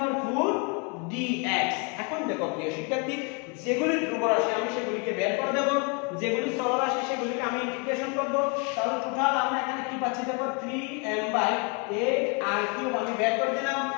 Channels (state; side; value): quieter; right; 33.4 dB